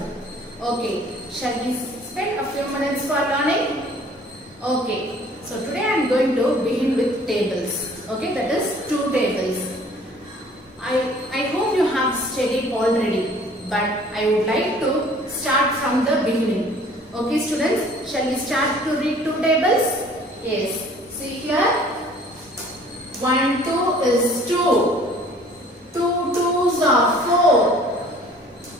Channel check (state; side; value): normal; both; correlation 0.53